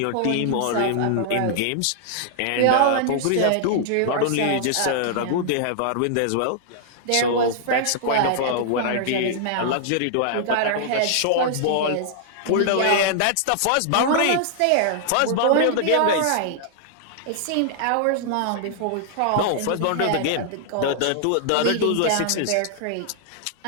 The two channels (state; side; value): different; both; correlation -0.01